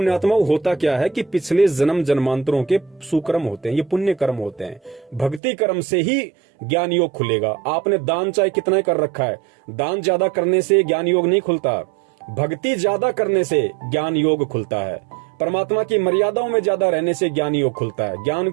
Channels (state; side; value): drops out; left; at 5.4 s